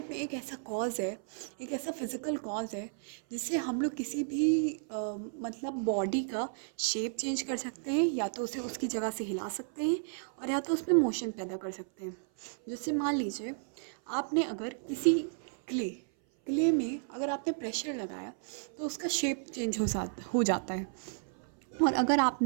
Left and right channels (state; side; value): silent; left; 56 dB below the other